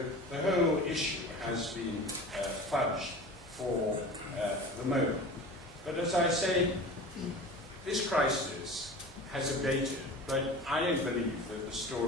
the whole issue has been fudged for the moment. But as I say, this crisis has abated, but I don't believe that the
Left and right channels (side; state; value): both; normal; correlation 0.36